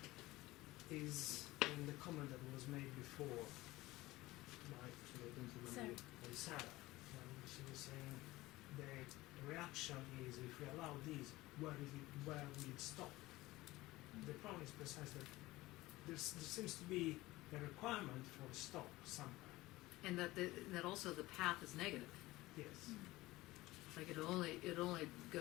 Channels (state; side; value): quieter; right; 18.8 dB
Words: is in the comment that was made before by Sarah. She was saying the reaction is, if we allow this, where will it stop? The problem is precisely that there seems to be a requirement for a stop somewhere. And that also the path is negative. Yes, Like it'll only